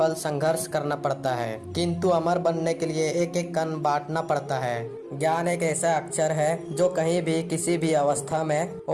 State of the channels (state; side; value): identical; both; correlation 1.00